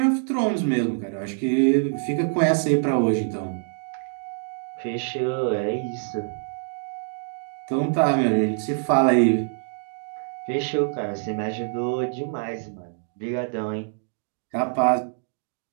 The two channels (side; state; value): left; silent; digital silence